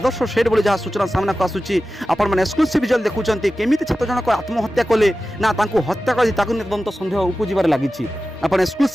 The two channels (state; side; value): normal; both; correlation 0.94